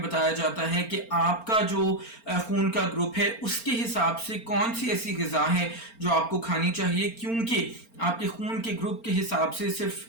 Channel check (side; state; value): right; late; 4.4 ms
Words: बताया जाता है कि आपका जो खून का ग्रुप है उसके हिसाब से कौन सी ऐसी ग़िज़ा है जो आपको खानी चाहिए, क्योंकि आपके खून के ग्रुप के हिसाब से सिर्फ